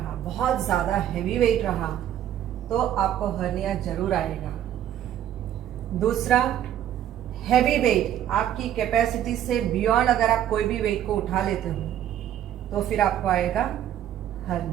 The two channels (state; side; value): quieter; left; 11.0 dB